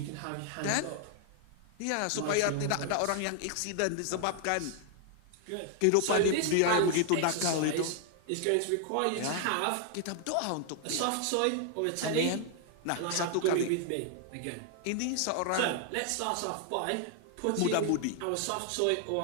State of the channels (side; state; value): both; different; correlation 0.00